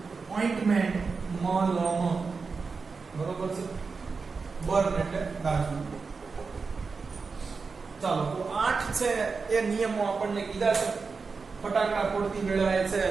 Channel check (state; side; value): quieter; left; 4.7 dB